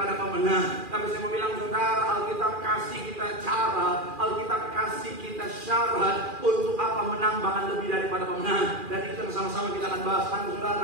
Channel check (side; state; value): left; late; 2.4 ms